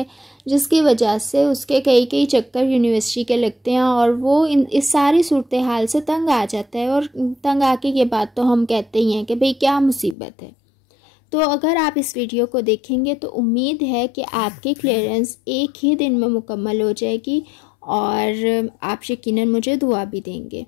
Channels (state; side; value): drops out; right; at 10.2 s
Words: जिसकी वजह से उसके कई चक्कर यूनिवर्सिटी के लगते हैं और वो इस सारी सूरत हाल से तंग आ जाता है। और तंग आके ये बात तो हम कहते ही हैं कि भाई क्या मुसीबत है। तो अगर आप इस वीडियो को देखेंगे तो उम्मीद है कि आपकी क्लियरेंस एक ही दिन में मुकम्मल हो जाएगी और आप यकीनन मुझे दुआ भी देंगे।